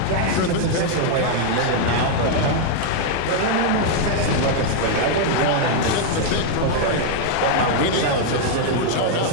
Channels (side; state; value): both; different; correlation 0.00